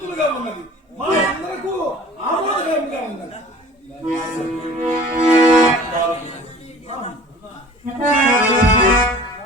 ఉన్నది. మా అందరకు ఆమోదకరంగా ఉన్నది.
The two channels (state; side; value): normal; both; correlation 0.46